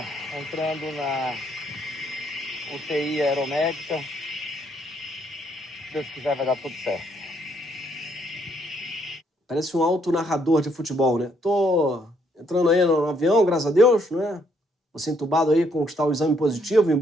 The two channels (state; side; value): normal; both; correlation 0.70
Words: entrando na UTI aeromédica. Se Deus quiser, vai dar tudo certo. Parece um auto-narrador de futebol, né? Tô entrando aí no avião, graças a Deus, né? Você entubado aí, conquistar o exame positivo em